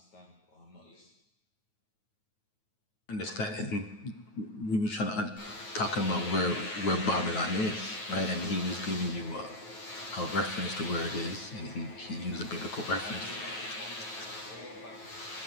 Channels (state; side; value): late; right; 9.3 ms